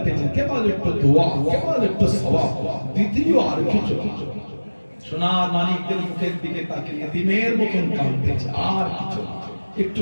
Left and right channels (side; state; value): both; inverted; correlation -1.00